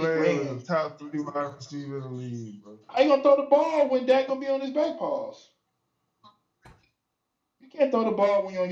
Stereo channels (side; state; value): both; identical; correlation 1.00